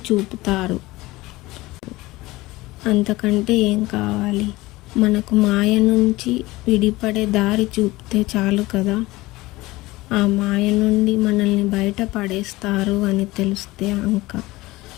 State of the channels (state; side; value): quieter; right; 19.6 dB